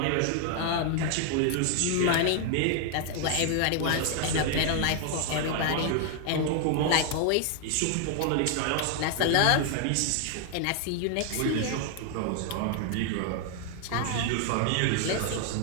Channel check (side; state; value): both; different; correlation 0.00